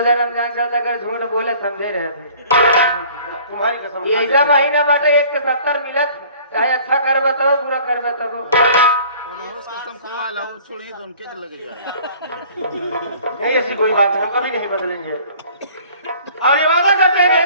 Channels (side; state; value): both; inverted; correlation -0.50